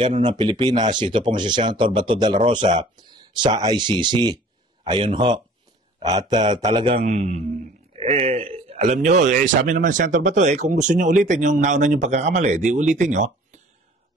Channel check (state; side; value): normal; both; correlation 0.50